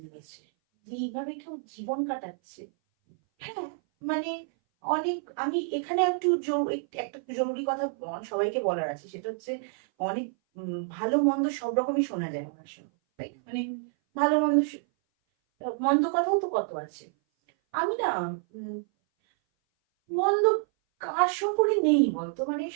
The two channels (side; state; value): left; silent; 57 dB below the other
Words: লেগেছে যে এইভাবে কেউ জীবন কাটাচ্ছে। হ্যাঁ, মানে অনেক, আমি এখানে একটা জরুরি কথা সবাইকে বলার আছে, সেটা হচ্ছে অনেক ভালো মন্দ সব রকমই শোনা যায় আমার সঙ্গে, তাই না? মানে ভালো মন্দ মন্দ কথাও তো কত আছে। আমি না মন্দ কার সম্পর্কে নেই বলতো, মানে